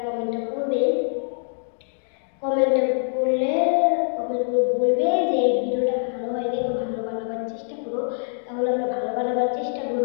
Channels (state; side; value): silent; right; digital silence